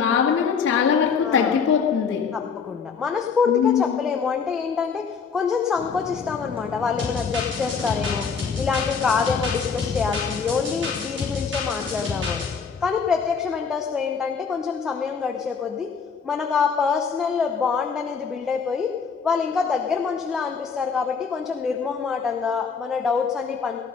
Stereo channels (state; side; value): quieter; right; 5.9 dB